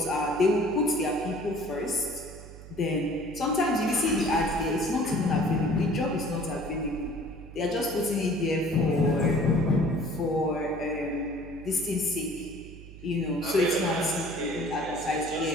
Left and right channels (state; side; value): noise; right; hum, 16 dB below the sound